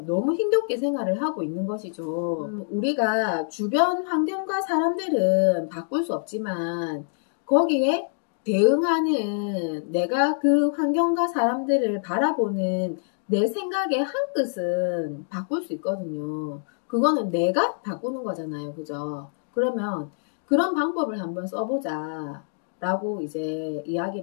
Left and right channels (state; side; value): silent; right; digital silence